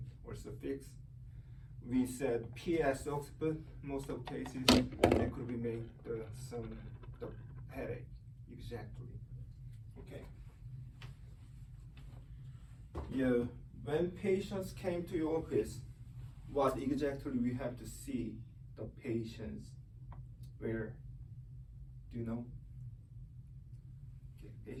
also fixed. We said PS occiput, most of cases, they could be made the headache, exactly. Okay. Yeah, when patients came to your office, what exactly we have to see the patients where? Do you know? Okay,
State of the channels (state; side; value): identical; both; correlation 1.00